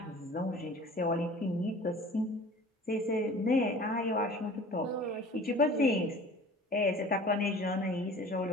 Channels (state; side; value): normal; both; correlation 0.44